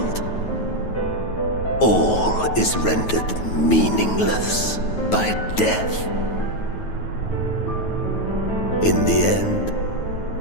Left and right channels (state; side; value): late; right; 9.2 ms